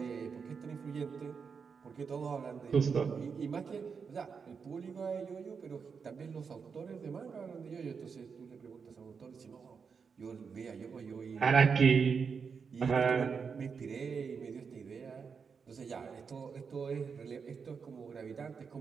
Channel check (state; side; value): quieter; left; 5.8 dB